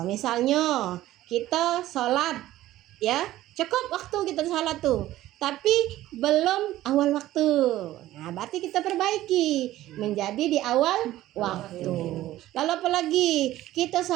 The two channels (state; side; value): quieter; left; 14.9 dB